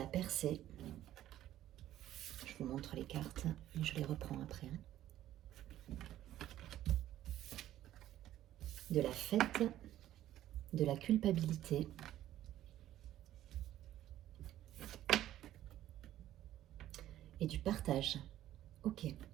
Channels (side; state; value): left; quieter; 13.0 dB